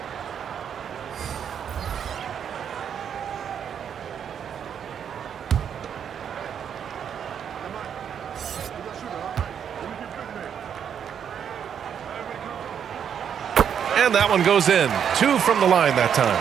And that one goes in. 2 from the line that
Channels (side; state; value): left; quieter; 8.2 dB